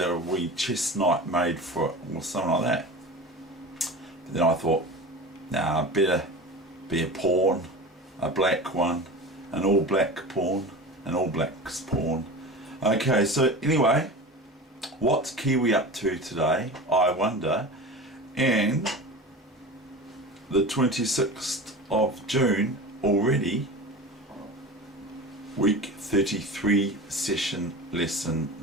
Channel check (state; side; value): normal; both; correlation 0.32